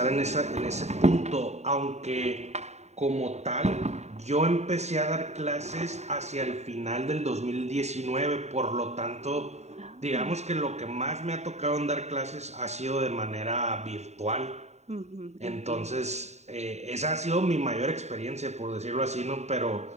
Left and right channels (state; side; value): late; left; 0.32 ms